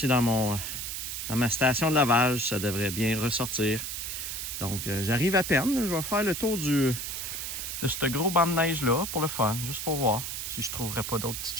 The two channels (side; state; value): right; noise; hiss, 5 dB below the sound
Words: dans ma station de lavage. Ça devrait bien ressortir. Donc, j'arrive à peine. Je vais faire le tour de ce gros banc de neige-là pour le fun. Juste pour voir si je trouverais pas d'autres petites